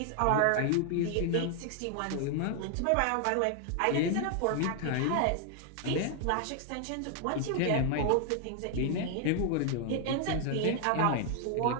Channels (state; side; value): different; both; correlation 0.00